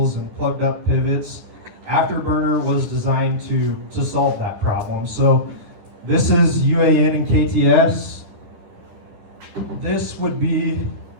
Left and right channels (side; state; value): left; late; 9.9 ms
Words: and plugged up pivots. Afterburner was designed to solve that problem. So this is UAN and KTS. This would be